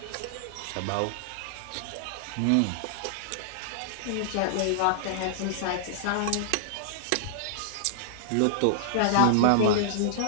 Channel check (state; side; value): different; both; correlation -0.01